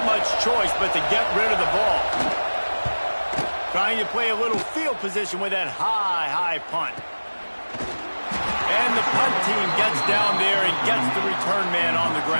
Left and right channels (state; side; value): inverted; both; correlation -1.00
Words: much choice but to get rid of the ball. Trying to play a little field position with that high punt. And the punt team gets down there and gets the return man on the